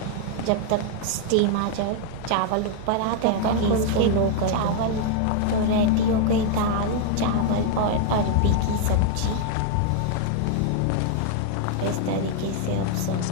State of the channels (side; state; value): both; different; correlation 0.00